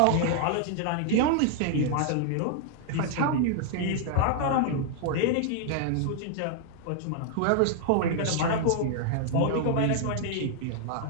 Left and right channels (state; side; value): different; both; correlation 0.00